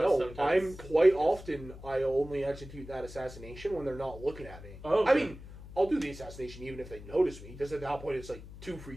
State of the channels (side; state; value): left; noise; hum, 15 dB below the sound